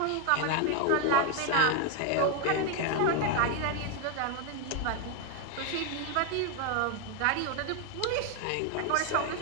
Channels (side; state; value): both; different; correlation 0.01